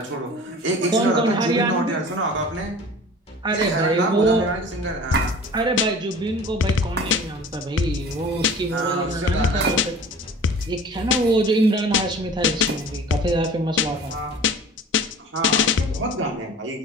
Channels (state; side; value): normal; both; correlation 0.42